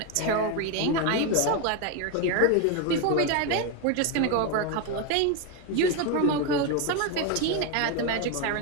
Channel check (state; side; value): different; both; correlation 0.02